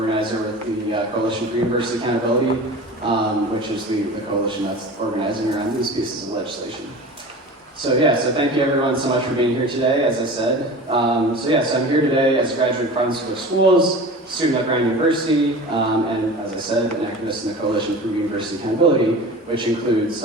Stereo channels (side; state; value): both; normal; correlation 0.35